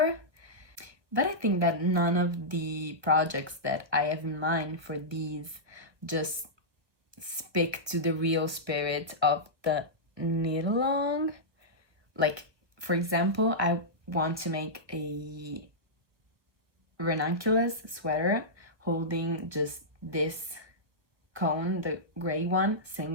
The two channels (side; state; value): left; late; 1.2 ms